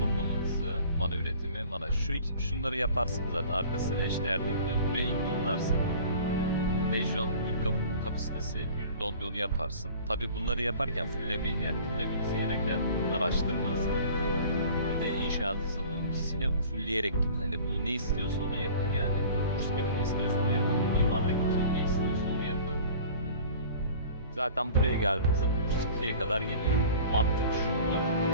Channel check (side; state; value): both; inverted; correlation -0.45